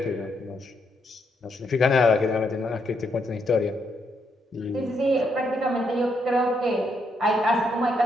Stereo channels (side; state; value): both; normal; correlation 0.77